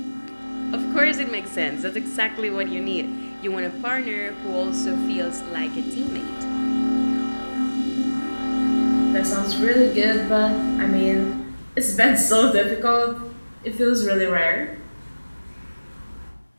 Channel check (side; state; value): both; inverted; correlation -1.00